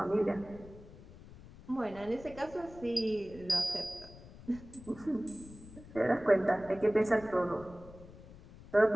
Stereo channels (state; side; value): noise; left; rumble, 18 dB below the sound